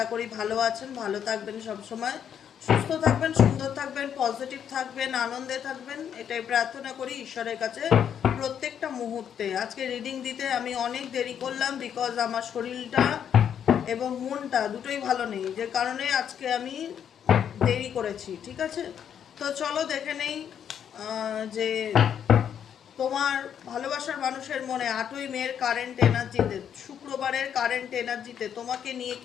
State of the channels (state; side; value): quieter; right; 8.7 dB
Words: করি ভালো আছেন, ভালো থাকবেন, সবসময় সুস্থ থাকবেন, সুন্দর থাকবেন, পজিটিভ থাকবেন, আনন্দে থাকবেন, এটাই প্রার্থনা করি ঈশ্বরের কাছে প্রত্যেকটা মুহূর্তে। আজকে রিডিং দিতে আমি অনেক দেরি করলাম, বিকজ আমার শরীরটা এবং মনটা দুটোই ভালো নেই, যে কারণে আজকে আমি দেরি করেছি। ঠিক আছে, তো চলো দেখে নেই যে তোমার ভালোবাসার মানুষের মনে 8ই মের কারেন্ট এনার্জিতে, শুক্রবারের কারেন্ট এনার্জিতে তোমাকে নিয়ে